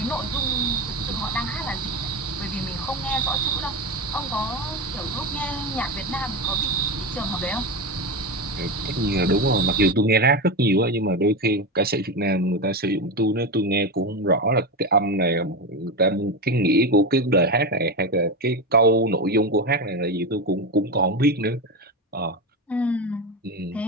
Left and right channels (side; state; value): both; normal; correlation 0.17